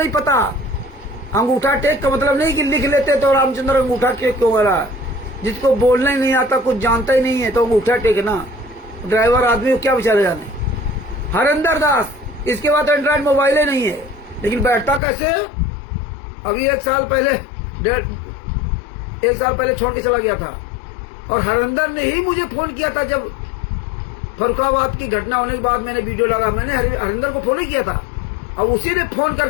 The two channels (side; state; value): right; drops out; at 15.0 s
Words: पता। अंगूठा टेक का मतलब नहीं कि लिख लेते तो रामचंद्र अंगूठा टेक क्यों हो रहा है। जिसको बोलना ही नहीं आता, कुछ जानता ही नहीं है, तो अंगूठा टेक ना, ड्राइवर आदमी को क्या बेचारे जाने। हरिंदर दास, इसके बाद एंड्रॉइड मोबाइल ही नहीं है, लेकिन बैठता कैसे। अभी 1 साल पहले छोड़ के चला गया था, और हरिंदर ने ही मुझे फोन किया था। जब फरुखाबाद की घटना होने के बाद मैंने वीडियो डाला, मैंने हरिंदर को फोन ही किया था, और उसी ने फोन